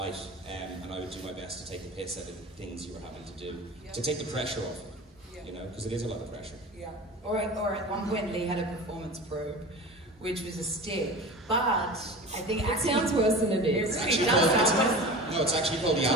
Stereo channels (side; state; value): both; normal; correlation 0.34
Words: and I would do my best to take the piss out of the things you were having to do, to take the pressure off it, you know, because it is a lot of pressure. Yeah. Or at one point, Lee had a performance probe, which was a stick, but I think it sounds worse than it is. It really does sound worse. No, it's actually called the